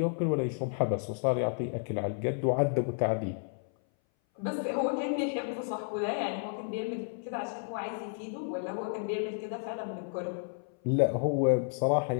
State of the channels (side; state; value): right; silent; 57 dB below the other